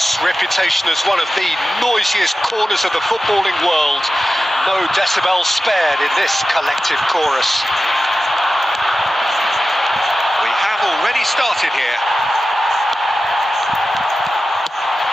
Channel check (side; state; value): both; normal; correlation 0.94